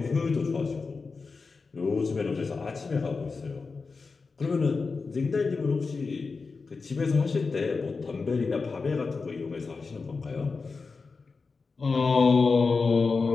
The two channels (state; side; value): quieter; right; 4.5 dB